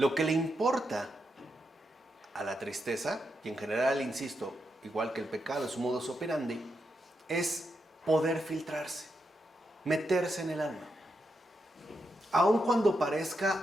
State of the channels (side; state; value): both; normal; correlation 0.84